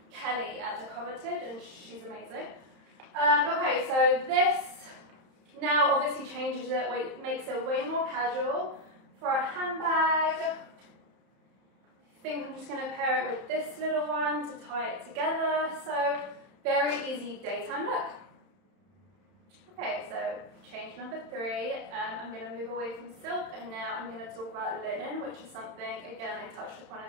Kelly at The Coveted, and she's amazing. Okay, so this now obviously changes it, makes it way more casual. For a handbag, I think I'm just going to pair it with this little one to tie it together. So very easy daytime look. Okay, so change number 3, I'm going to move away from silk, and now I'm going to talk about linen, which is something, again, I touched upon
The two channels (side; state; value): left; late; 31 ms